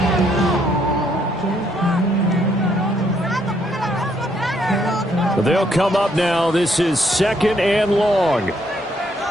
They'll come up now. This is 2nd and long.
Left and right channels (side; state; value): both; normal; correlation 0.71